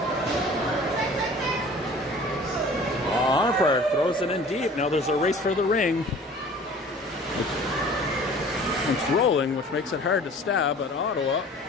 Arnprior throws it in deep. Now there's a race for the ring. It's rolling, which makes it hard to stab, but Ottawa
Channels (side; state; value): both; normal; correlation 0.46